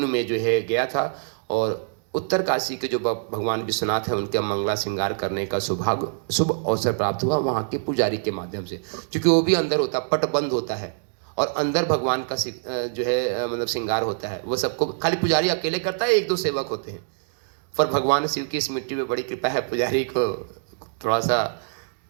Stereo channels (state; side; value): silent; left; digital silence